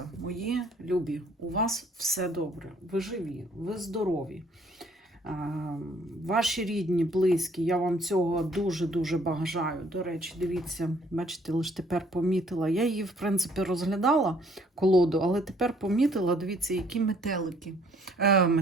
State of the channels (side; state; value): both; normal; correlation 0.62